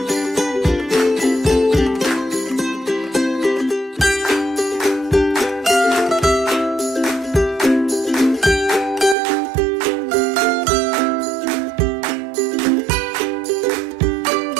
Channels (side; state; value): left; drops out; at 9.2 s